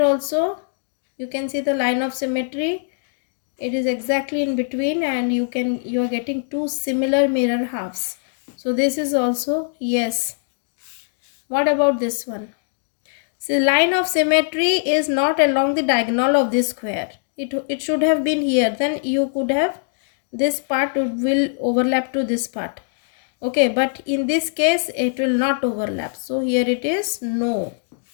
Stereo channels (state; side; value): silent; right; digital silence